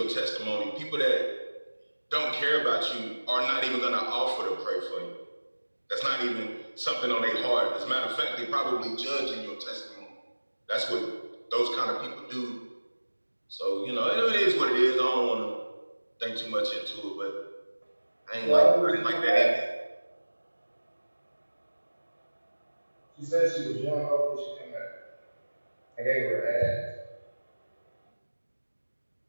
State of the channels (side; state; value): both; inverted; correlation -1.00